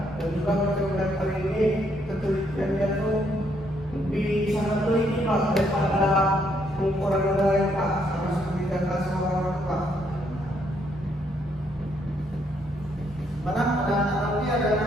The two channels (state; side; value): normal; both; correlation 0.72